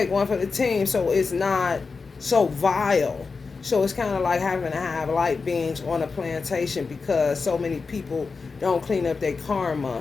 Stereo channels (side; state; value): right; quieter; 4.6 dB